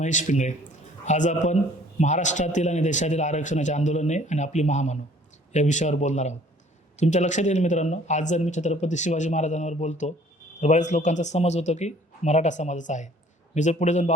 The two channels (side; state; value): both; normal; correlation 0.55